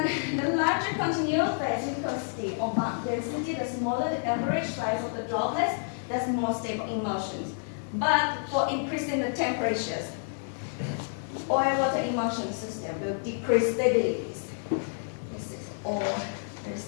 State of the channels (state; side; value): silent; right; digital silence